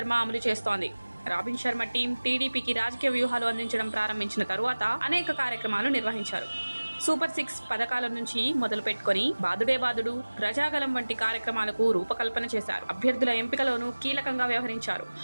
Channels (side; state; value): both; inverted; correlation -1.00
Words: అమలు చేస్తోంది. రాబిన్ శర్మ టీం టీడీపీకి రాజకీయ వ్యూహాలు అందించడం ప్రారంభించిన తరువాత అనేక కార్యక్రమాలు నిర్వహించారు. సూపర్ 6 పథకాల నుంచి మొదలు పెట్టుకుని బాదుడే బాదుడు, ప్రజాగలం వంటి కార్యక్రమాలకు రూపకల్పన చేశారు. అభ్యర్థుల ఎంపికలోనూ కీలకంగా వ్యవహరించారు.